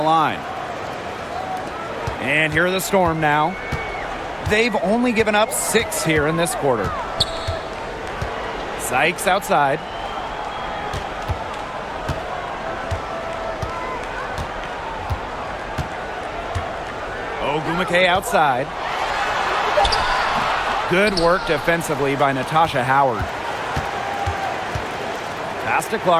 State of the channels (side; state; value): both; identical; correlation 1.00